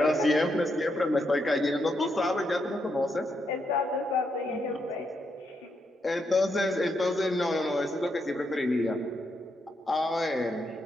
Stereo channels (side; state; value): both; normal; correlation 0.80